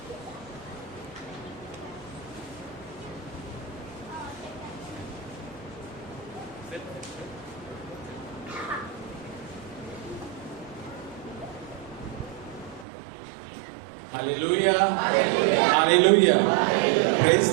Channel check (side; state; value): left; drops out; at 12.9 s